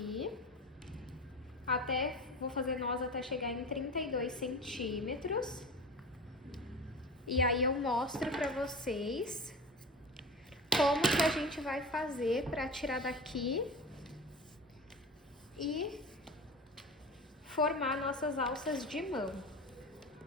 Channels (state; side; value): normal; both; correlation 0.32